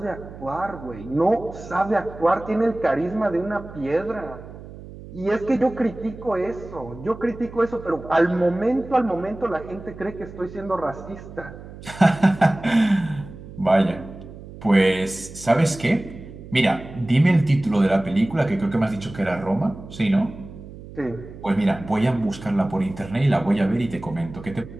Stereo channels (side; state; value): right; noise; hum, 15 dB below the sound